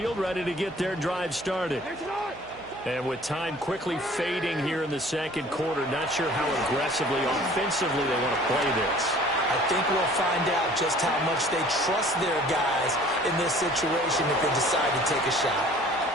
ready to get their drive started. And with time quickly fading here in the second quarter, not sure how aggressively, offensively they want to play this. I think we'll find out just how much they trust their guys in this situation if they decide to take a shot.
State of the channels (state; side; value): noise; right; hum, 23 dB below the sound